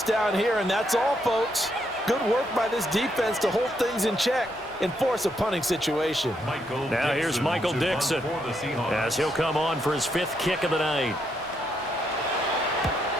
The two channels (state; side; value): normal; both; correlation 0.77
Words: down here, and that's all, folks. Good work by this defense to hold things in check and force a punting situation. Now here's Michael Dixon as he'll come on for his 5th kick of the night.